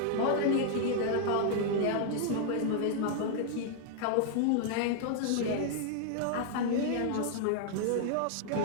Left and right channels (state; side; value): different; both; correlation 0.00